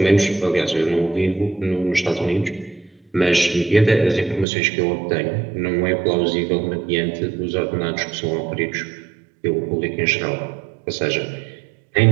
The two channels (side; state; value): left; drops out; at 4.5 s